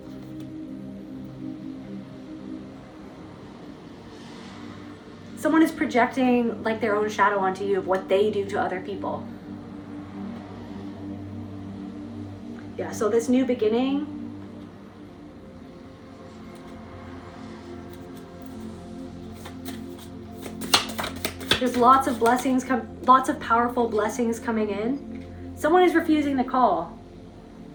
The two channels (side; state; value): both; identical; correlation 1.00